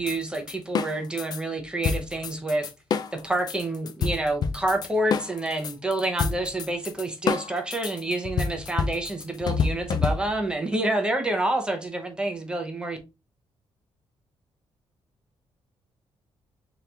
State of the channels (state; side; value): normal; both; correlation 0.72